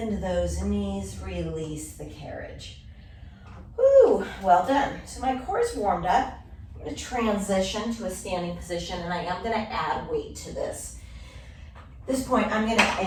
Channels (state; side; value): identical; both; correlation 1.00